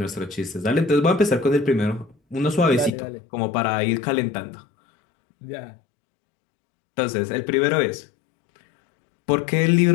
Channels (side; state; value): right; drops out; at 2.9 s